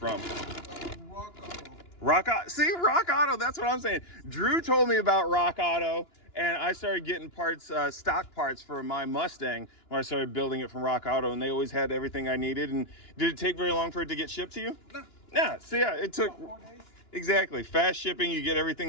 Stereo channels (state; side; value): late; right; 2.9 ms